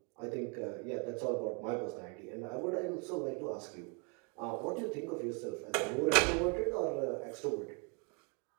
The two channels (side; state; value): left; quieter; 34.8 dB